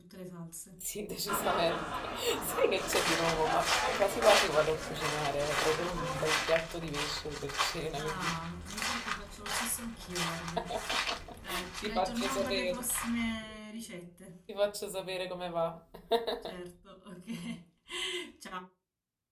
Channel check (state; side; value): identical; both; correlation 1.00